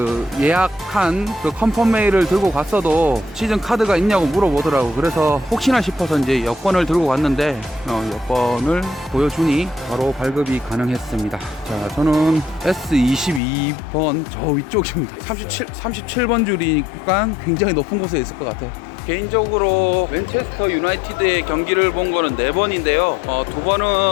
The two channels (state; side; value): drops out; right; at 13.4 s